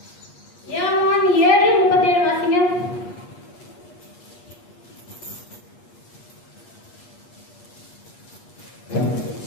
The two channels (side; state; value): right; late; 8.4 ms